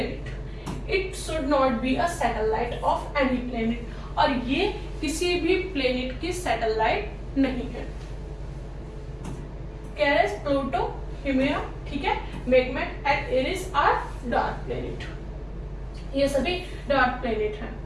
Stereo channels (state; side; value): identical; both; correlation 1.00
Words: It should not be a satellite of any planet. और ये किसी भी प्लेनेट की सैटेलाइट नहीं है. केरेस, प्लूटो, हिमेरा, ठीक है, Makemake and Eris are dark planet. ये सभी डार्क प्लेनेट हैं.